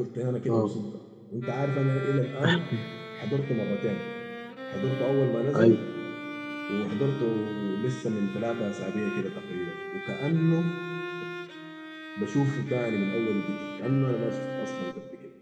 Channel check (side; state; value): both; identical; correlation 1.00